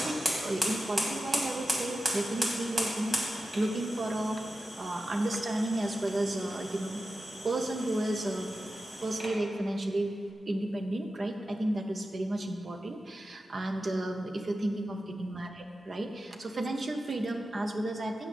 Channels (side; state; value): both; normal; correlation 0.92